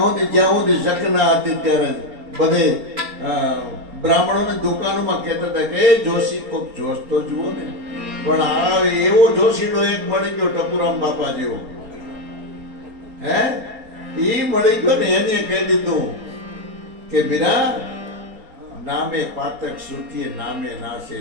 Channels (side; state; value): left; late; 4.3 ms